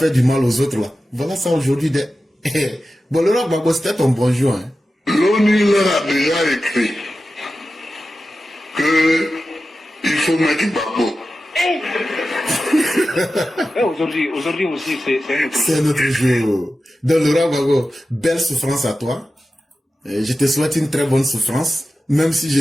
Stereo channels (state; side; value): normal; both; correlation 0.93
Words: du mal aux autres là, voilà ça aujourd'hui. Bon, le roi Babo, c'était ton bonjour. Hein. L'ONU leur a déjà écrit que il faut mettre Babo. Aujourd'hui aussi, c'est notre jour. Donc, le roi Babo, belle souffrance à toi. Je te souhaite une très bonne souffrance, même si